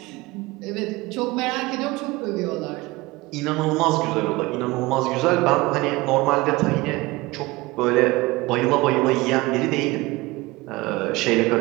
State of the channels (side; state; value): left; quieter; 21.4 dB